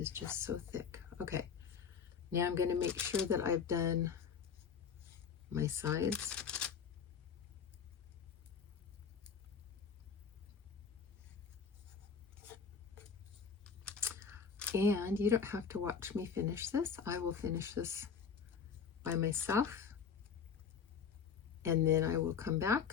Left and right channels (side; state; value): right; quieter; 6.5 dB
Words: just so thick. Okay, now I'm going to make sure that I've done my sides. And you don't have to watch me finish this. I will finish this by myself. And then I will come back,